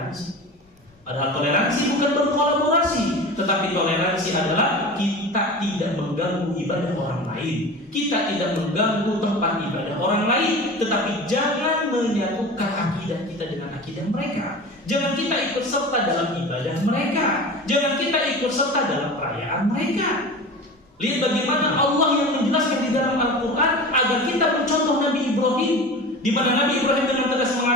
Padahal toleransi bukan berkolaborasi, tetapi toleransi adalah kita tidak mengganggu ibadah orang lain. Kita tidak mengganggu tempat ibadah orang lain, tetapi jangan menyatukan akidah kita dengan akidah mereka. Jangan kita ikut serta dalam ibadah mereka. Jangan kita ikut serta dalam perayaan mereka. Lihat bagaimana Allah yang menjelaskan di dalam Al-Quran agar kita mencontoh Nabi Ibrahim, di mana Nabi Ibrahim dengan tegas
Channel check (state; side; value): normal; both; correlation 0.33